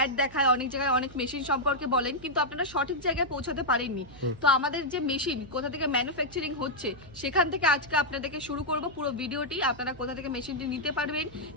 দেখায়, অনেক জায়গায় অনেক মেশিন সম্পর্কে বলেন, কিন্তু আপনারা সঠিক জায়গায় পৌঁছাতে পারেননি। তো আমাদের যে মেশিন কোথা থেকে ম্যানুফ্যাকচারিং হচ্ছে সেখান থেকে আজকে আপনাদেরকে শুরু করব পুরো ভিডিওটি। আপনারা কোথা থেকে মেশিনটি নিতে পারবেন,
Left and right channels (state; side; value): noise; right; hum, 20 dB below the sound